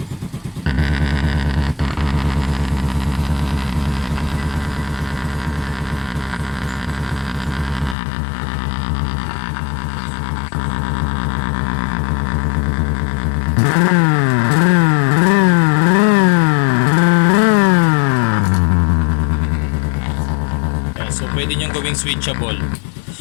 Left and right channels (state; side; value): drops out; right; at 8.0 s